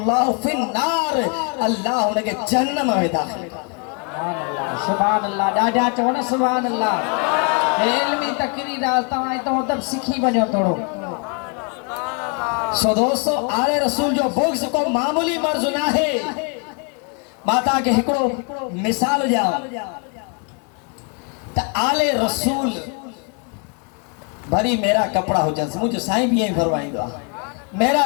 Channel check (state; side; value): quieter; right; 36.2 dB